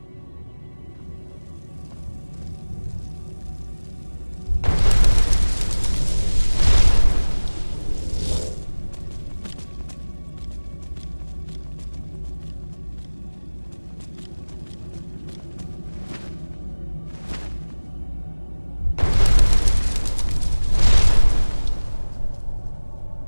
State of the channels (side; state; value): both; inverted; correlation -1.00